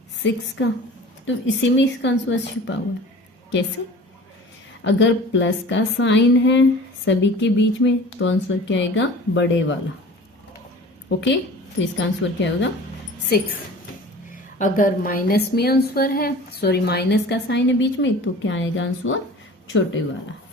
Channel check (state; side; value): normal; both; correlation 0.42